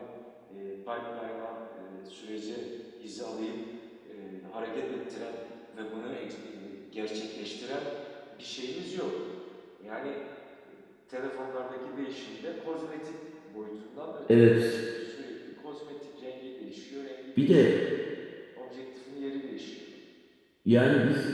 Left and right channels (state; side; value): identical; both; correlation 1.00